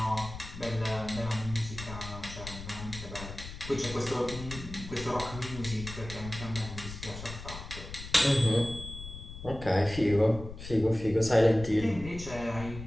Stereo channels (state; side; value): noise; left; rumble, 11 dB below the sound